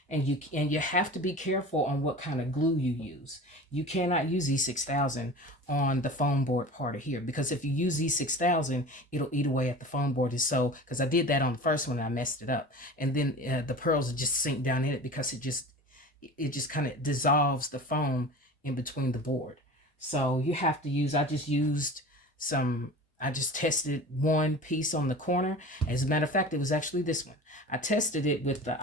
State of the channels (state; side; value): normal; both; correlation 0.36